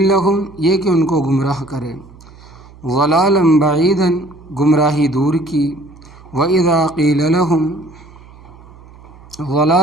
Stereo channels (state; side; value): noise; right; hum, 22 dB below the sound